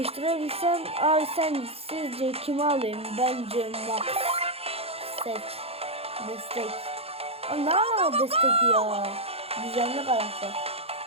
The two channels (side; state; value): left; late; 0.29 ms